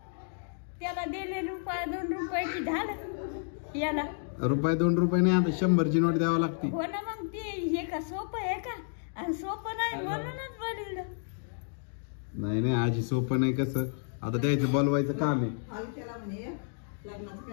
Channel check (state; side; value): silent; right; digital silence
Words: त्याला दिले रुपये 2 रुपयाची झालं. याला रुपये 2 रुपये नाही, आता 100ची नोट द्यावं लागते. हो ना. मग ते हे का सोपं आहे का? आणि सोपं नाही म्हणूनच बोलवलं. नाही नाही आजी सोपं नाही. कसं आता द्यायचं बोलवायचं काम आहे.